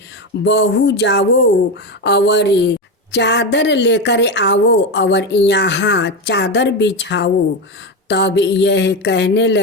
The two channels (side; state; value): both; normal; correlation 0.15